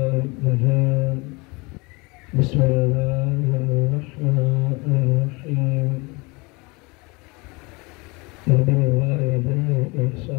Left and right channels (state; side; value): quieter; right; 26.5 dB